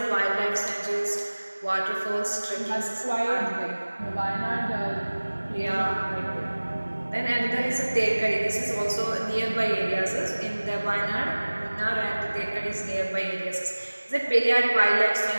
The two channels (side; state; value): both; inverted; correlation -1.00